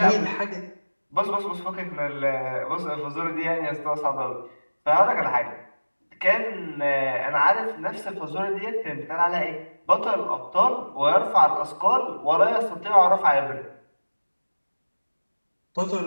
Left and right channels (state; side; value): inverted; both; correlation -1.00